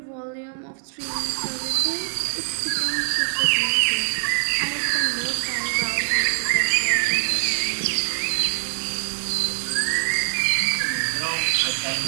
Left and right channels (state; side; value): silent; left; 59 dB below the other